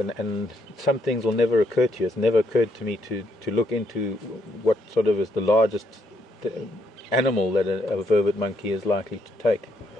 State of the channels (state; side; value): normal; both; correlation 0.74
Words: some things will never occur to you. It's never occurred to me to look into what sort of is the largest animal that a vervet monkey is likely to take.